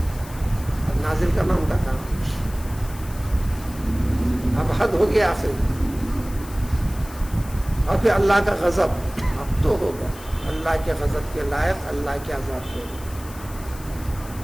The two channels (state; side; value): noise; left; hiss, 18 dB below the sound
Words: اب نازل کرنا ان کا کام، اب حد ہو گیا آخری، اور پھر اللہ کا غضب اب تو ہوگا، اللہ کے غضب کے لائق اللہ کے عذاب ہوگا۔